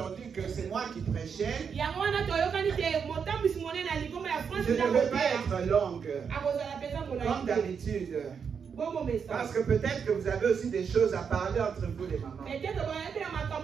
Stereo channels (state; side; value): quieter; left; 6.6 dB